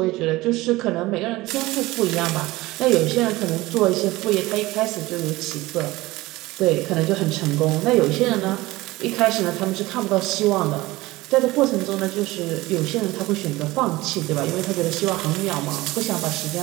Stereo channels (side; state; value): left; quieter; 19.4 dB